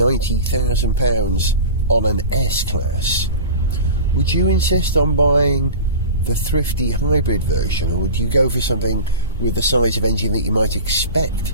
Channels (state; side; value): inverted; both; correlation -0.34